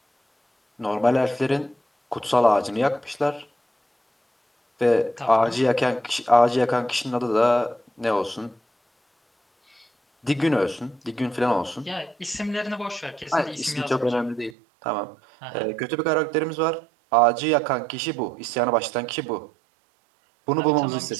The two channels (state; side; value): drops out; left; at 14.6 s